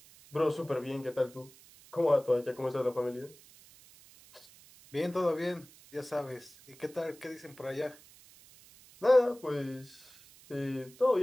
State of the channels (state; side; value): noise; right; hiss, 23 dB below the sound